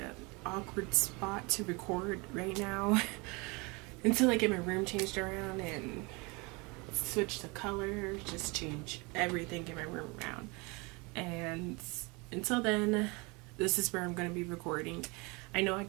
awkward spot to record right now until I get my room changed around and switch the color, just change everything in my room around. And until then, this is where I'm going to be recording. I know I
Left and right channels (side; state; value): left; quieter; 27.7 dB